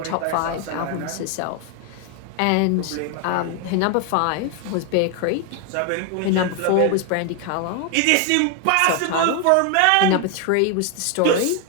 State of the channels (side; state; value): both; different; correlation 0.01